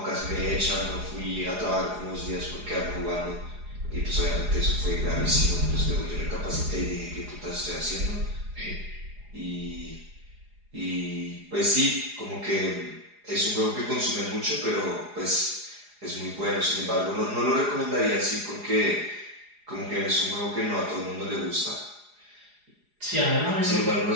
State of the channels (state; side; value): late; left; 4.8 ms